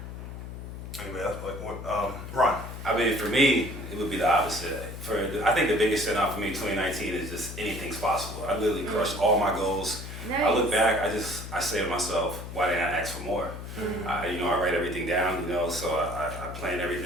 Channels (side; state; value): left; noise; hum, 9 dB below the sound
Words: Anyway, that's like what, Ron. I mean, for me, it would be the opposite. I think the biggest standout for me in 2019 is just anything's possible. I literally crushed all my goals. Nice. I look back, I say to myself, why didn't I ask for more? I write everything down, so I plan